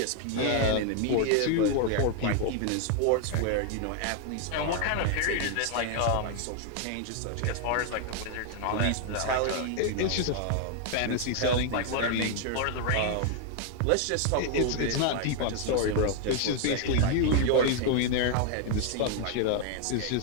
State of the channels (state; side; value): different; both; correlation 0.00